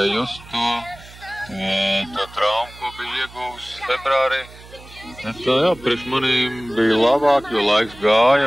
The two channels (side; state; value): right; noise; hum, 20 dB below the sound